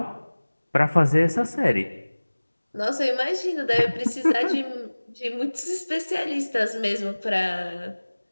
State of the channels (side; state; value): both; inverted; correlation -1.00